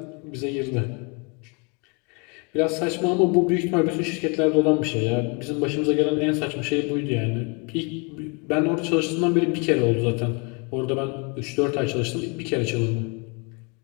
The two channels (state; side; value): quieter; right; 32.5 dB